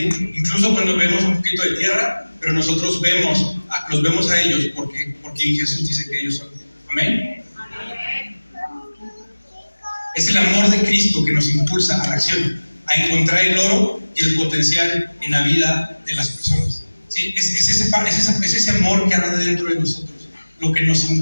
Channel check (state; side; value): inverted; both; correlation -1.00